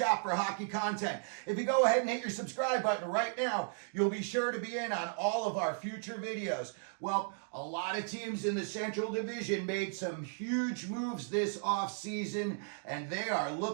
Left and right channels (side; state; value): left; silent; digital silence